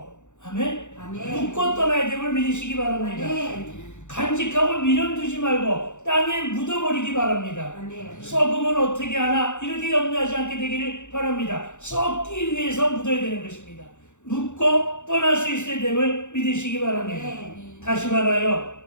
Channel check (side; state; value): right; late; 0.84 ms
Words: 아멘. 아멘. 묻고 떠나야 됨을 믿으시기 바랍니다. 아멘. 간직하고 미련두지 말고 땅에 묻어버리기 바랍니다. 아멘. 썩으면 어떻게 하나 이렇게 염려하지 않게 되기를 바랍니다. 썩기 위해서 묻어야 되는 것입니다. 묻고 떠날 수 있어야 됨을 믿으시기 바랍니다. 아멘. 다시 말하여